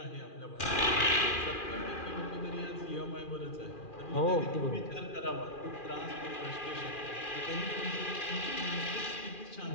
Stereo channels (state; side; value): late; right; 2.4 ms